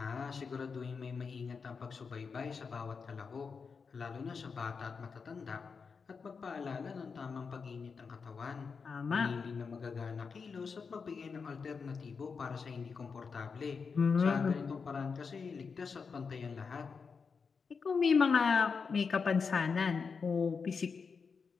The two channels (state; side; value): quieter; right; 5.4 dB